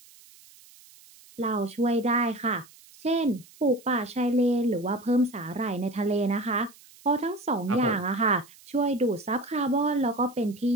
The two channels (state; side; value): noise; right; hiss, 24 dB below the sound